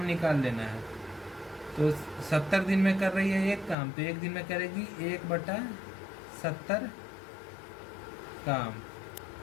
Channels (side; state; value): right; drops out; at 3.8 s